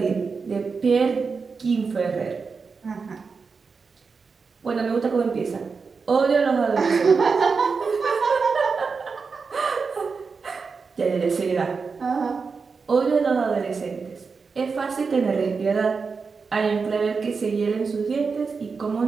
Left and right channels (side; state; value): left; quieter; 5.0 dB